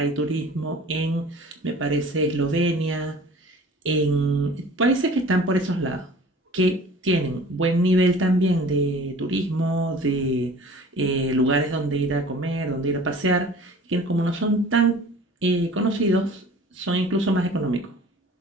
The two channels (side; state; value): both; normal; correlation 0.45